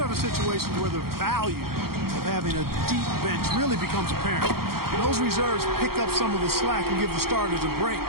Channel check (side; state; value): left; late; 0.94 ms